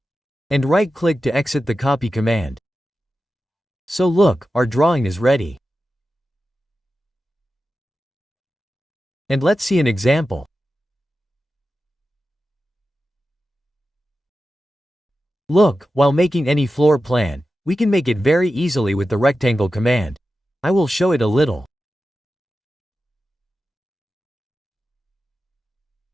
And right-click to exit the copy command. So look, our drawing is ready. And let's see an example. Look, while making any floor plan, we can make it very easily with the rectangle command. I will show it a little.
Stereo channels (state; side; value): normal; both; correlation 0.92